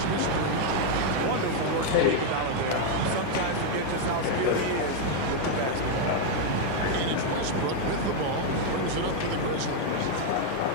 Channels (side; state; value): both; different; correlation 0.00